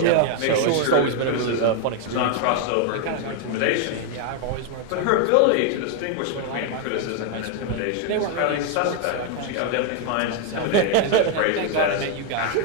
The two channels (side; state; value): both; different; correlation 0.00